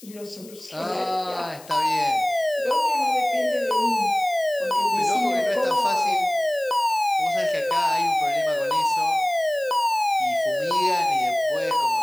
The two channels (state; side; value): noise; left; hiss, 21 dB below the sound